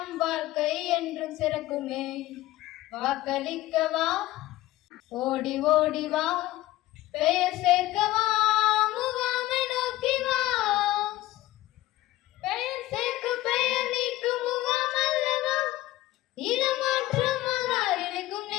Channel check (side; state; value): right; quieter; 16.1 dB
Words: வாழ்க்கை என்றும் சிறக்குமே. வாக்களிக்கவா, ஓடி ஓடி வா, பெயர் சேர்க்கவா, முகாமை நோக்கி வா. பெயர் சேர்க்க பெயர் நீக்கும் முகாம் அல்லவா, இடமாற்றம் இணைக்கும்